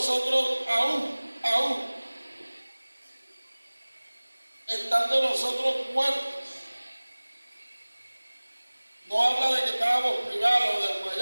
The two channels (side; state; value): both; inverted; correlation -1.00